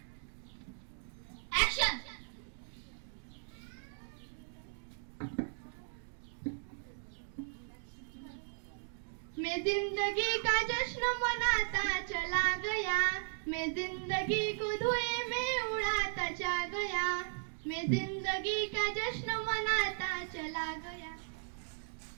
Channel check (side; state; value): left; silent; digital silence